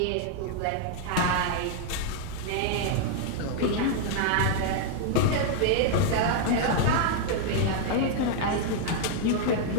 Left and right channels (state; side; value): different; both; correlation 0.00